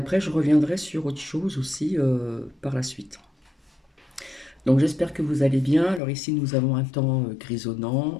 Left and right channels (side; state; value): right; drops out; at 6.0 s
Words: je reviendrai sur autre chose aussi par la suite. Donc j'espère que vous allez bien. Alors ici, nous avons un temps grisonnant,